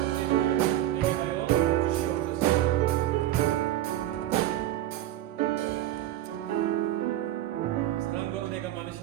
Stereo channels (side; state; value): left; quieter; 13.4 dB